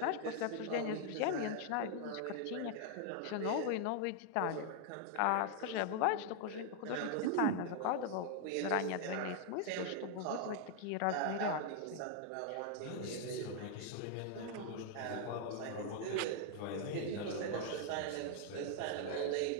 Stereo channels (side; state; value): both; different; correlation 0.00